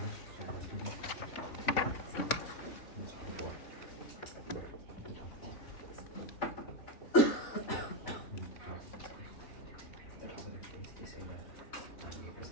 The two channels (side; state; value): right; late; 3.6 ms